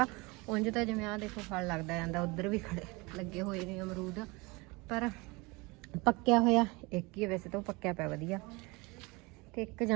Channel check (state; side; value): quieter; left; 25.6 dB